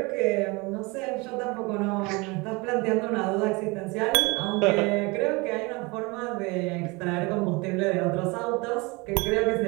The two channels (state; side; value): quieter; left; 26.1 dB